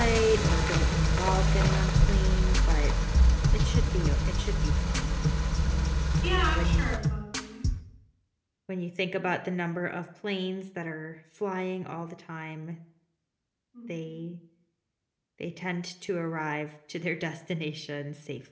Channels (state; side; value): identical; both; correlation 1.00